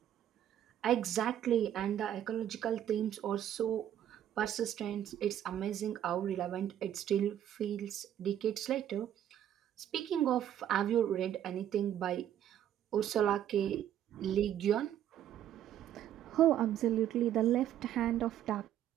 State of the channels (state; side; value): quieter; left; 10.8 dB